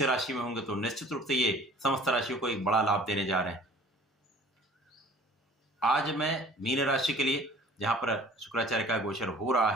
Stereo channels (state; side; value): normal; both; correlation 0.49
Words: राशि में होंगे, तो निश्चित रूप से ये समस्त राशियों को एक बड़ा लाभ देने जा रहे हैं। आज मैं मीन राशि के लिए, जहां पर शुक्राचार्य का गोचर हो रहा